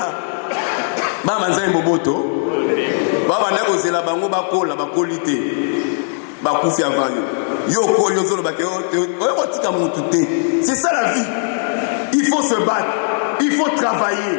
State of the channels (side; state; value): right; silent; digital silence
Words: ba manza mboboto. Ba bande kozela bango bakola bakolite. Ba kufi avanyo. Yo kolyo zolo bake o tika mutu te. C'est ça la vie. Il faut se battre. Il faut travailler.